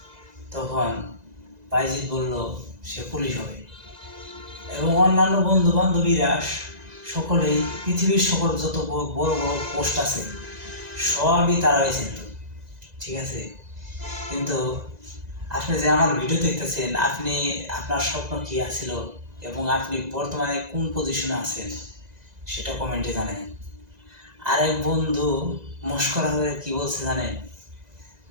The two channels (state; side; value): late; left; 1.9 ms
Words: তখন বাইজিৎ বলল সে পুলিশ হবে। এবং অন্যান্য বন্ধু বান্ধবীরা সকলেই পৃথিবীর সকল যত বড় বড় পোস্ট আছে সবই তারা হয়েছেন, ঠিক আছে। কিন্তু আপনি যে আমার ভিডিও দেখতেছেন, আপনি আপনার স্বপ্ন কি আছিল এবং আপনি বর্তমানে কোন পজিশনে আছেন সেটা কমেন্টে জানেন। আরেক বন্ধু মস্করা হয়ে কি বলছে জানেন?